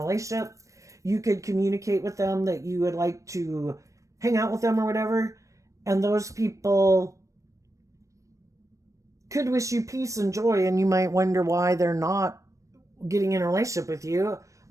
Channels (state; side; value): late; left; 0.15 ms